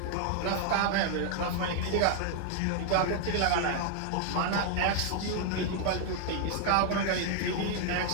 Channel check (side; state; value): both; different; correlation 0.00